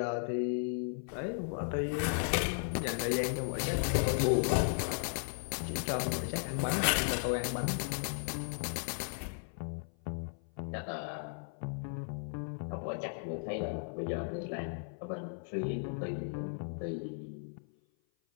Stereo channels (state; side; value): silent; right; 54 dB below the other